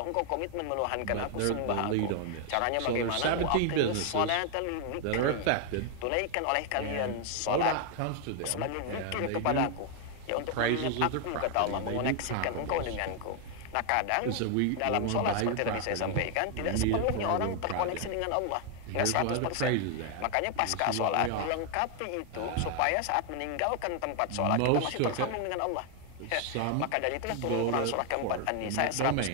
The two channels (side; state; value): both; different; correlation 0.00